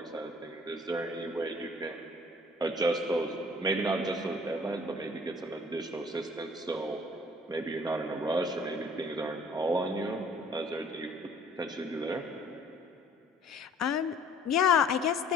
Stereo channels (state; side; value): normal; both; correlation 0.55